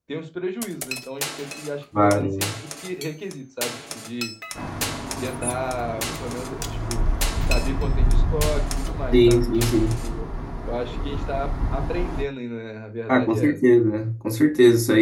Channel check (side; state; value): both; identical; correlation 1.00